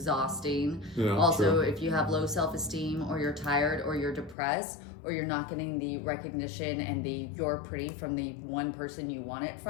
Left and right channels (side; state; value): right; drops out; at 4.4 s